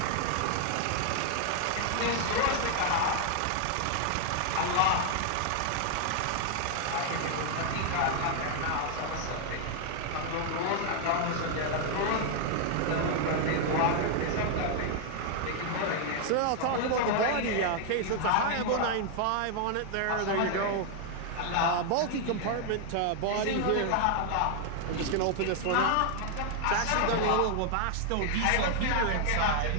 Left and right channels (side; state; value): both; different; correlation 0.00